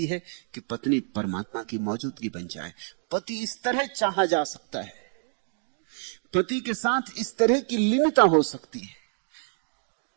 है कि पत्नी परमात्मा की मौजूदगी बन जाए। पति इस तरह चाहा जा सकता है, पति के साथ इस तरह की लीनता हो सकती है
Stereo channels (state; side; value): silent; left; digital silence